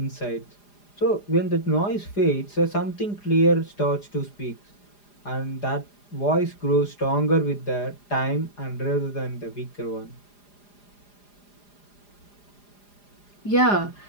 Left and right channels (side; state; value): right; late; 4.9 ms